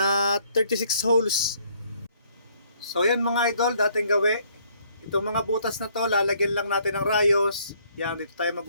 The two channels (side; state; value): both; inverted; correlation -0.64